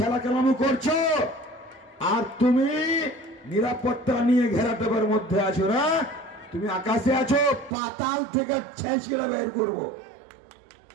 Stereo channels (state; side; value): drops out; left; at 7.7 s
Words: কেলামো করছো, আর তুমি নিরাপত্তা নিয়ে ঘেরাটোপের মধ্যে আছো না? তুমি আকাশে আছো, পাতাল থেকে ছেঁচড়ে বের করবো,